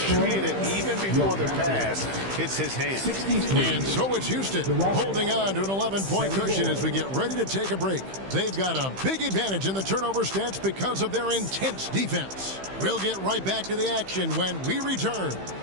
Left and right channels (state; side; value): late; left; 15 ms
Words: it even before the pass hits his hand. And so it's Houston holding on to an 11-point cushion as we get ready to take a break. They've got a big advantage in the turnover stats because of their intense defense. We'll get right back to the action when we return.